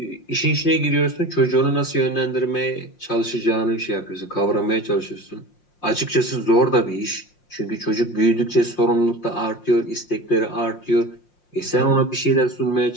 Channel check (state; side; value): late; right; 5.6 ms